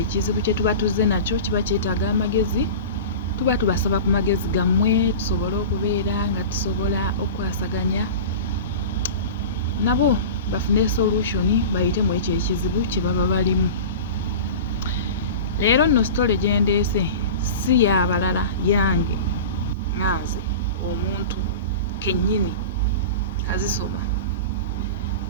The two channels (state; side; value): inverted; both; correlation -0.32